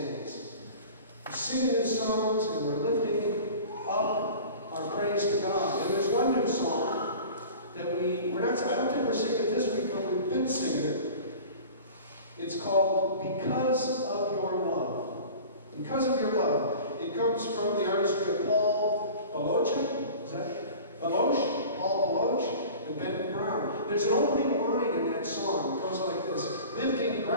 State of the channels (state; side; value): inverted; both; correlation -0.40